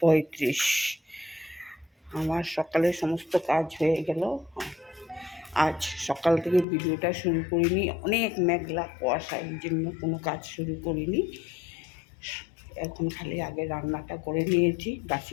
আমার সকালে সমস্ত কাজ হয়ে গেল। আজ সকাল থেকে ভিডিওটা শুরু করিনি, অনেক মেঘলা কুয়াশা, এই জন্য কোনো কাজ শুরু করিনি। এখন খালি আগে রান্নাটা করে নিয়েছি,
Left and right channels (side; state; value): right; drops out; at 6.7 s